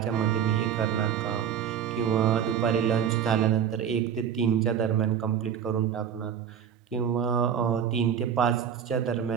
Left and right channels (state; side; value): quieter; left; 8.4 dB